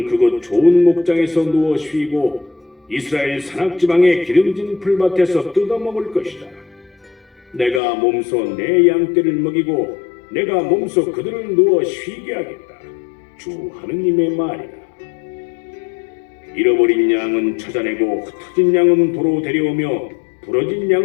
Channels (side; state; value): right; drops out; at 7.8 s